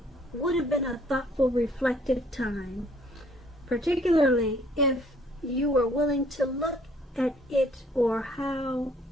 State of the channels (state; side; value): normal; both; correlation 0.61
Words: would have been a thoughtful, reflective time, particularly if you were willing to look at it or how